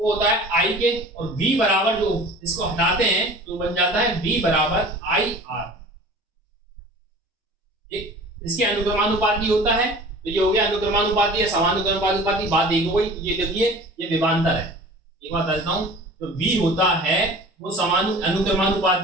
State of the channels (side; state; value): both; normal; correlation 0.42